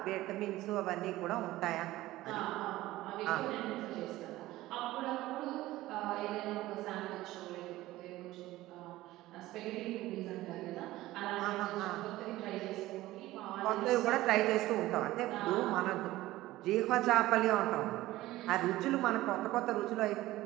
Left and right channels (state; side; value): quieter; left; 16.9 dB